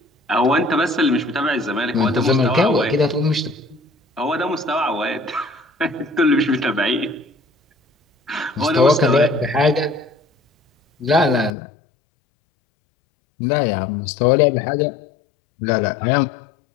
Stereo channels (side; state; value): right; drops out; at 11.5 s